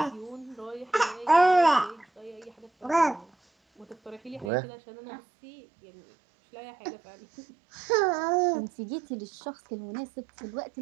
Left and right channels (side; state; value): left; drops out; at 4.5 s